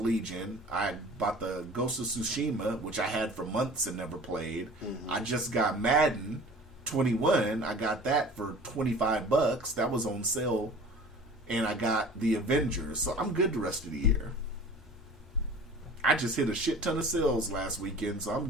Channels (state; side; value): normal; both; correlation 0.43